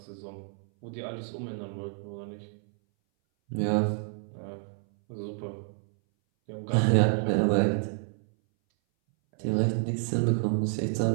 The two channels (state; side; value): silent; left; 58 dB below the other